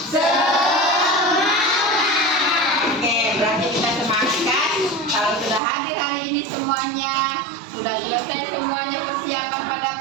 Kalau sudah hadir hari ini semuanya, sudah selesai semuanya persiapan pada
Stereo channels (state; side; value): drops out; left; at 5.6 s